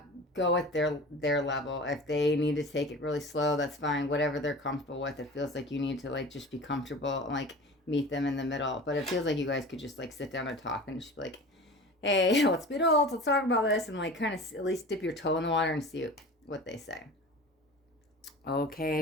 go at their level. If they need to take it really slow, that's fine. Whatever they're comfortable with. It feels like you need to like just be comfortable and like meet them in the middle. But it feels like you guys could just like sit down and talk and just be like, hey, let's be adults, let's talk about this, and like kind of at least dip your toe in the water and see what they say.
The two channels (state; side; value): normal; both; correlation 0.37